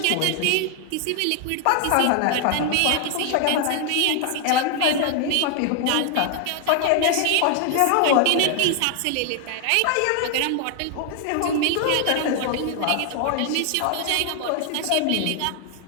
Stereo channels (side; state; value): both; different; correlation 0.00